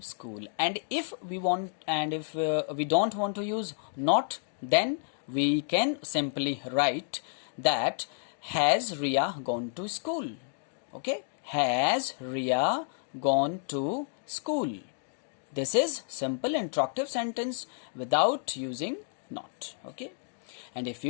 school? And if we want, and if we don't want to use not, then we can simply write that has Ria gone to school? Okay. Has Ria gone to school? This is simple interruptive sentence without using not. Okay. And if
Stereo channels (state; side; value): silent; right; digital silence